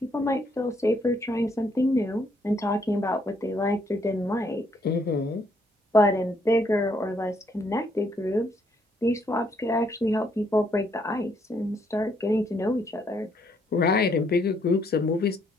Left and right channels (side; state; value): both; normal; correlation 0.71